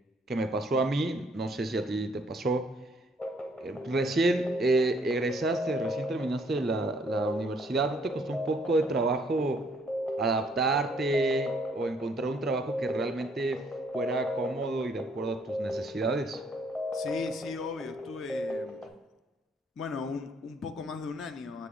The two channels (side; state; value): both; normal; correlation 0.66